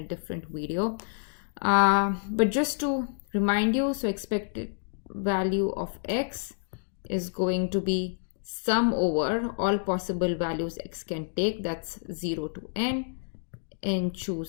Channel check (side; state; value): right; silent; digital silence